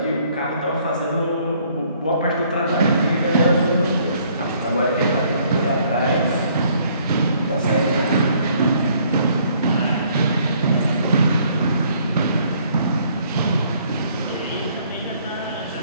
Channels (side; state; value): both; inverted; correlation -0.64